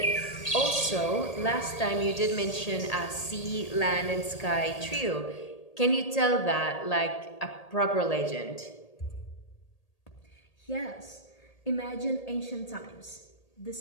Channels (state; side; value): late; right; 1.8 ms